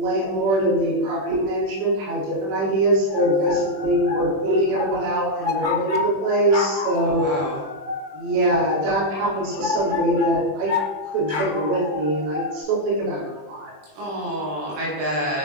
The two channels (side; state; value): left; late; 21 ms